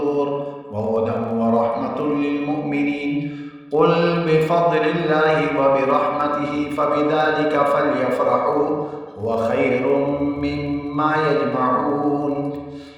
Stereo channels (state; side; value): identical; both; correlation 1.00